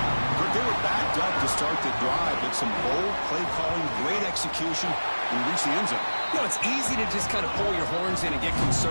They were backed up to start the drive, but some bold play calling, great execution, and reach the end zone. You know, it's easy to just kind of pull your horns in and get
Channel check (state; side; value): inverted; both; correlation -1.00